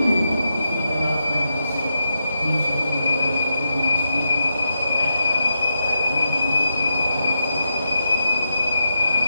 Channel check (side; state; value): both; inverted; correlation -0.86